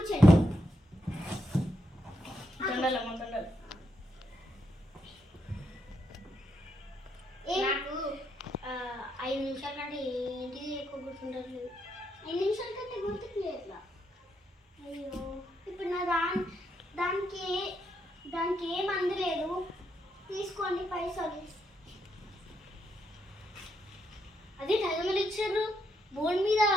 నాకు 5 నిమిషాల కంటే ఏంటిది ఎక్కువ గుర్తుండదు. 5 నిమిషాల కంటే గుర్తుకు లేదు. అయ్యో ఇప్పుడు నా దానికి ఏం అందలేదు. తీసుకోండి పైసలు. అదే టైమలు ఇచ్చారు. బోర్డు మీద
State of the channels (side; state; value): both; normal; correlation 0.80